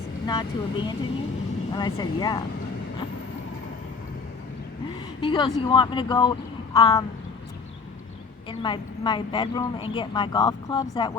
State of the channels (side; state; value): right; quieter; 4.8 dB